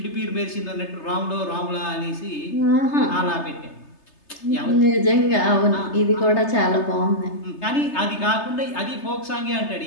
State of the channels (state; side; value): late; right; 3.3 ms